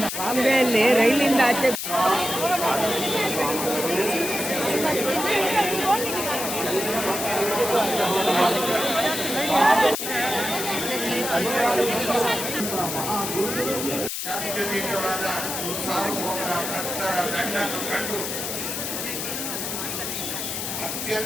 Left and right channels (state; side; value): noise; left; hiss, 4 dB below the sound